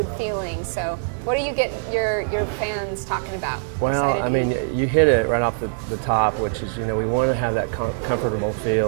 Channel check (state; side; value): silent; left; digital silence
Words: feeling. So, what do you get your fans talking about? Well, Excited I to mean, eat? you hit it right off the top, which is, you know, we want to have that comfortable